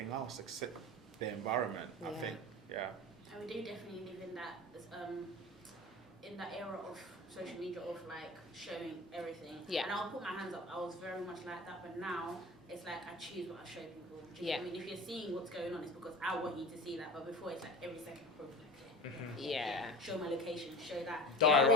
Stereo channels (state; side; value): normal; both; correlation 0.35